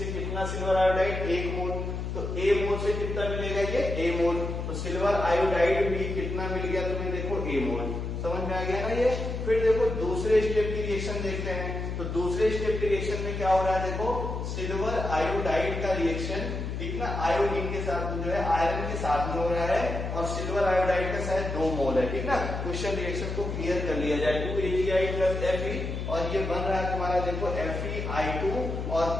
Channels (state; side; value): noise; left; hum, 4 dB below the sound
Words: कितना सिल्वर आयोडाइड 1 मोल, तो A मोल से कितना मिलेगा ये A मोल, तो सिल्वर आयोडाइड भी कितना मिल गया तुम्हें देखो A मोल, समझ में आ गया ना ये। फिर देखो दूसरे स्टेप की रिएक्शन देखते हैं। तो दूसरे स्टेप के रिएक्शन में क्या हो रहा है, देखो सिल्वर आयोडाइड का रिएक्शन, ठीक ना, आयोडीन के साथ जो है आयरन के साथ में हो रहा है और सिल्वर आयोडाइड का शायद 2 मोल है, ठीक ना। क्वेश्चन रिएक्शन को क्लियर कर लिया जाए, 2AgI प्लस Fe और ये बन रहा है तुम्हारा देखो FeI2 और